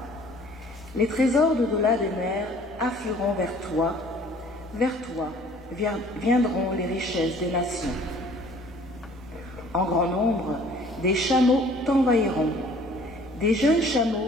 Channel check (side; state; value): both; normal; correlation 0.53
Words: Les trésors d'au-delà des mers afflueront vers toi viendront les richesses des nations. En grand nombre, des chameaux t'envahiront, des jeunes